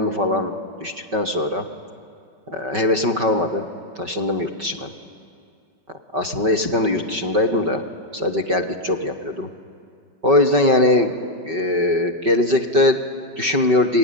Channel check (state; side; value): late; left; 5.3 ms